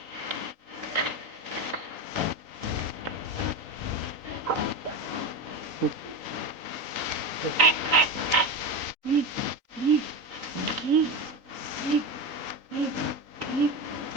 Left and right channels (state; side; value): late; left; 3.8 ms